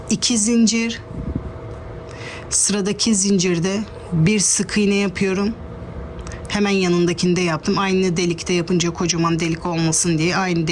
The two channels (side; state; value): both; identical; correlation 1.00